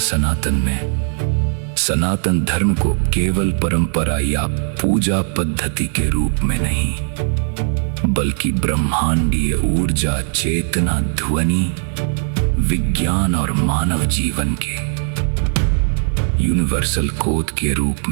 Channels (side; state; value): left; silent; 67 dB below the other